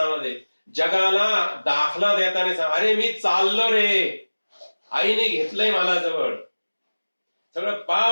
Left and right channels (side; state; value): both; inverted; correlation -1.00